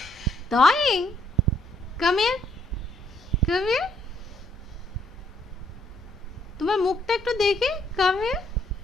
Drawing? Come here, come here. তোমার মুখটা একটু দেখি, কাম হিয়ার।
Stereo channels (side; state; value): both; normal; correlation 0.69